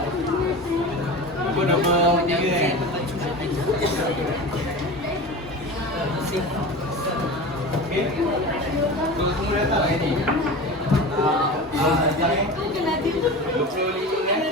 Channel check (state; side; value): normal; both; correlation 0.31